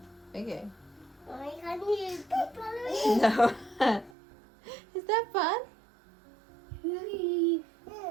Okay. Why can't you keep following? No. Is that fun?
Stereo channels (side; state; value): left; drops out; at 4.1 s